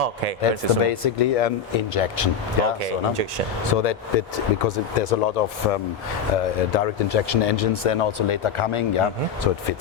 That's basically an injection. Injection. So that because there's a lot of direct injection engines then also later coming, so it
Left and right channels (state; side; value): quieter; right; 6.9 dB